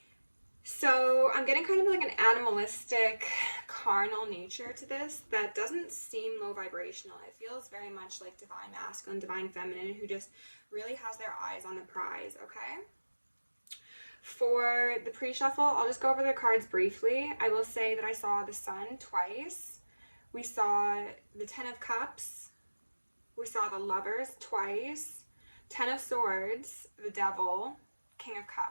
So I'm getting kind of like an animalistic, carnal nature to this that doesn't seem low vibrational. It feels very much like divine masculine, divine feminine, who just really has their eyes on the prize, okay? For the pre-shuffle, I'll just go over the cards briefly. I will say that I saw the Sun twice. We saw the Ten of Cups. We saw the Lovers twice. Ten of Swords, the Devil, King of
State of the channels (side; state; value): both; inverted; correlation -1.00